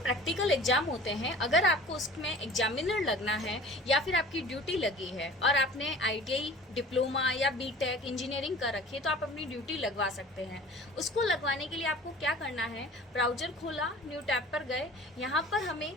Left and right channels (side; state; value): both; normal; correlation 0.43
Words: exam होते हैं, अगर आपको उसमें एग्जामिनर लगना है या फिर आपकी ड्यूटी लगी है और आपने आईटीआई डिप्लोमा या बीटेक इंजीनियरिंग कर रखी है तो आप अपनी ड्यूटी लगवा सकते हैं। उसको लगवाने के लिए आपको क्या करना है, ब्राउजर खोला, न्यू टैब पर गए, यहाँ पर हमें